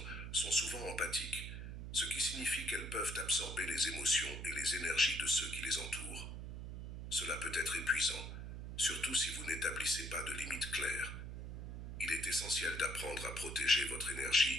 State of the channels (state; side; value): noise; right; hum, 7 dB below the sound